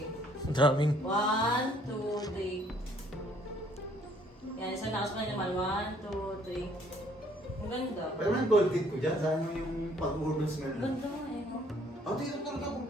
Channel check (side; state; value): both; normal; correlation 0.62